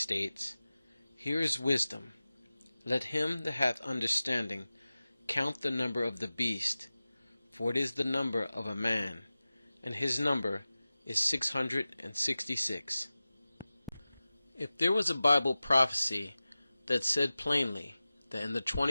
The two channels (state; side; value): inverted; both; correlation -0.96